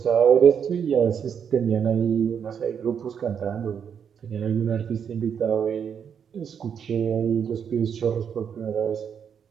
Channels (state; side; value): quieter; left; 7.6 dB